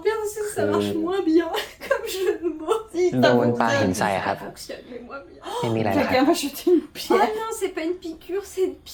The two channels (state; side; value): identical; both; correlation 1.00